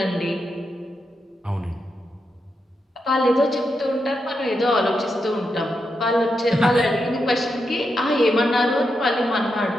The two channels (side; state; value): both; normal; correlation 0.85